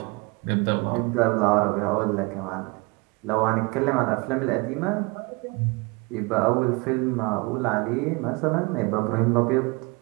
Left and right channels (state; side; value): quieter; left; 27.0 dB